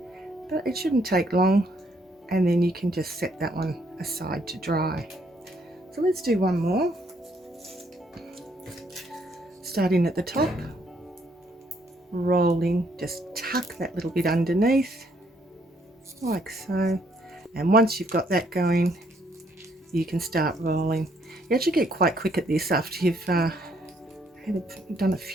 but it shouldn't take long, and then you can just set that one aside to dry. So let's do one more. Starting at the top, rolling, just tuck that little bit underneath like so, and once you've got that going, you can start rolling. You actually get quite quick at this after you've done a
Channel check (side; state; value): both; normal; correlation 0.69